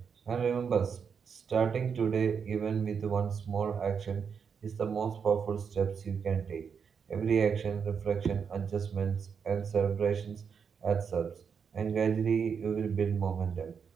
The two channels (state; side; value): quieter; left; 6.5 dB